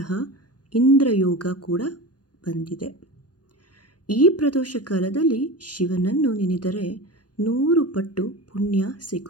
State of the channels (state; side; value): late; right; 0.69 ms